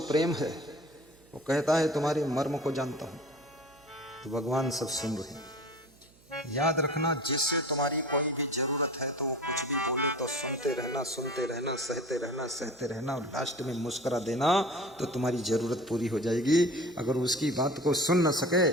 प्रेम है। वो कहता है तुम्हारे मर्म को जानता हूं। तो भगवान सब सुन रहे हैं। याद रखना, जिससे तुम्हारी कोई भी जरूरत है तो वो कुछ भी बोले तो सुनते रहना, सुनते रहना, सहते रहना, सहते रहना, और लास्ट में मुस्कुरा देना तो तुम्हारी जरूरत पूरी हो जाएगी। अगर उसकी बात को सुन न सके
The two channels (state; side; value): noise; right; hum, 28 dB below the sound